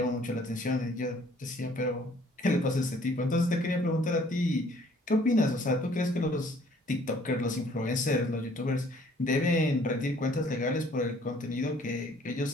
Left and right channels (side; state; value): both; normal; correlation 0.58